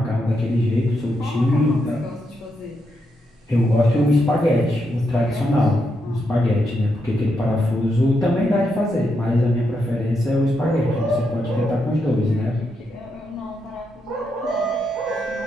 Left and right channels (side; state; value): both; normal; correlation 0.82